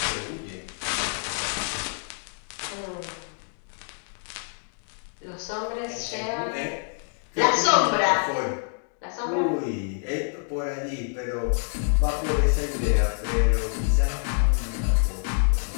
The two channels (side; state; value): right; silent; 60 dB below the other